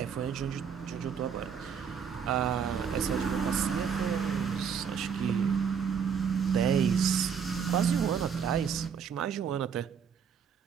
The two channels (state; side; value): quieter; left; 7.1 dB